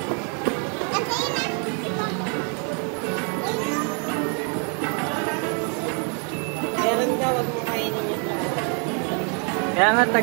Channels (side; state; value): left; quieter; 38.6 dB